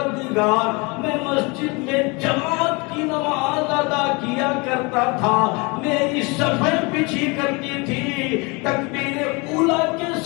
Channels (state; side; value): quieter; right; 28.0 dB